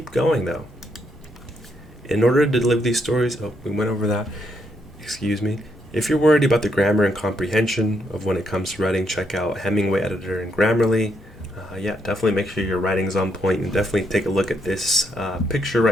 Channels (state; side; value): normal; both; correlation 0.77